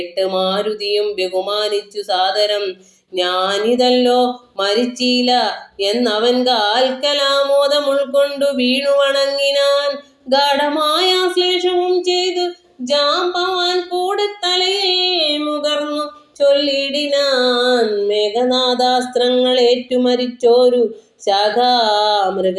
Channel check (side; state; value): both; identical; correlation 1.00